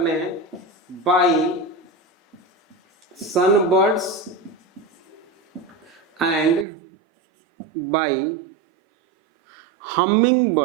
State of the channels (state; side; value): drops out; left; at 6.7 s